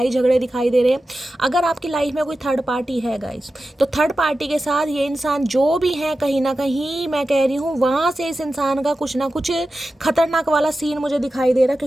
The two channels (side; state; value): both; normal; correlation 0.93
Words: झगड़े दिखाई दे रहे हैं। अगर आपकी लाइफ में कोई थर्ड पार्टी है गाइस, तो थर्ड पार्टी के साथ ये इंसान जो भी है, कहीं ना कहीं मैं कह रही हूँ वहाँ से इस इंसान का कुछ ना कुछ खतरनाक वाला सीन मुझे दिखाई दे रहा है,